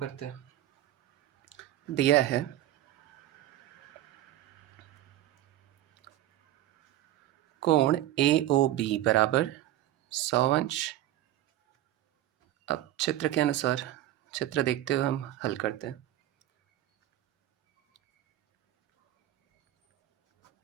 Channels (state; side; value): quieter; left; 13.9 dB